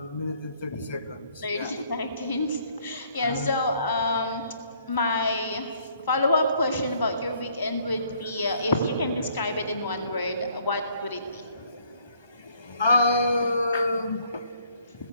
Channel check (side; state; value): both; inverted; correlation -0.64